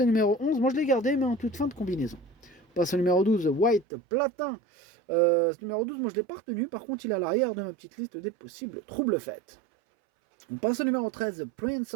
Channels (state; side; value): drops out; left; at 3.9 s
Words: numéro 11. Moi, je l'ai gardé, mais en toute fin de combinaison. On passe au numéro 12, White Platin. Ce numéro 12, moi, je ne l'ai pas retenu. Par contre, il est à l'arrière de ma petite liste des possibles troubles faits. On passe au numéro 13, Prince